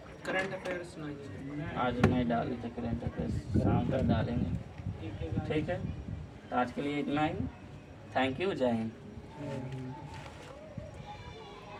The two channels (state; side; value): identical; both; correlation 1.00